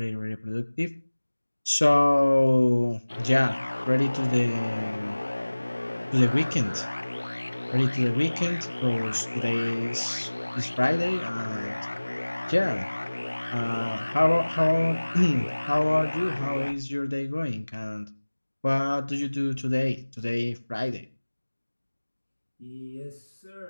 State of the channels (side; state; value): both; inverted; correlation -1.00